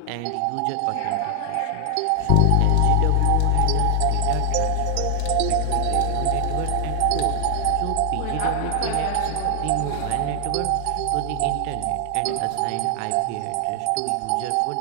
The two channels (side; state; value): both; different; correlation 0.00